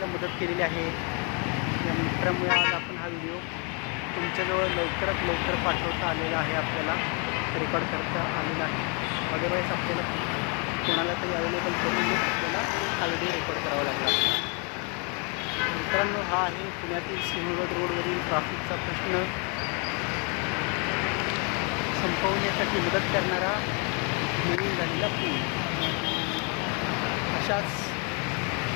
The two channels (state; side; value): quieter; right; 35.2 dB